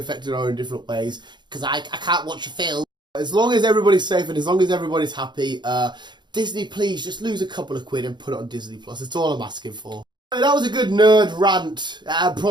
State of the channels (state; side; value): late; left; 0.22 ms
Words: in our own different ways, because I can't watch a film. As long as everybody's safe and as long as everybody's happy, Disney, please just lose a couple of quid and put it on Disney Plus. That's all I'm asking for. That was a good nerd rant,